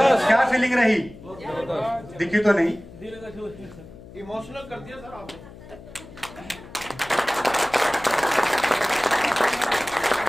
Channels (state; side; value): noise; left; hum, 18 dB below the sound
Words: क्या फीलिंग रही? दिखी तो नहीं। इमोशनल कर दिया सर आपने।